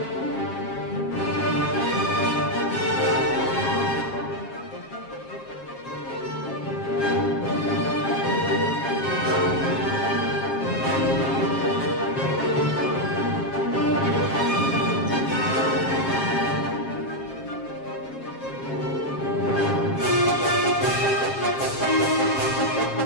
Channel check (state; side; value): late; right; 7.4 ms